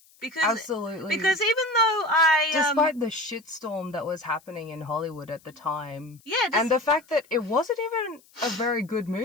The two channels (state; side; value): noise; left; hiss, 29 dB below the sound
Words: Because, absolutely. Because even though despite the shitstorm that was happening in Hollywood at the time. Yeah. And the fact that it wasn't even a very good